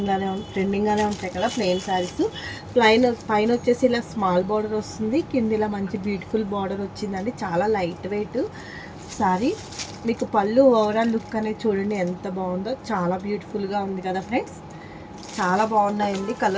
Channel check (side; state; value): both; identical; correlation 1.00